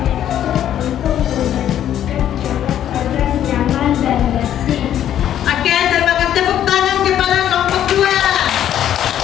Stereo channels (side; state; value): right; quieter; 10.8 dB